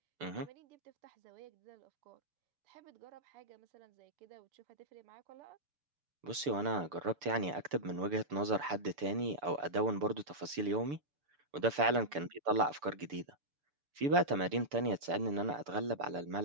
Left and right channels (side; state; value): left; late; 6.9 ms